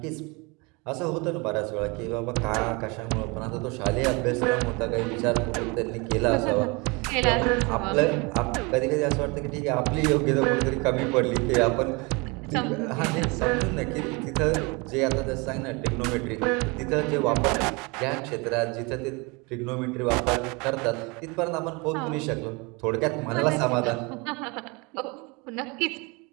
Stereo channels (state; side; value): quieter; left; 28.1 dB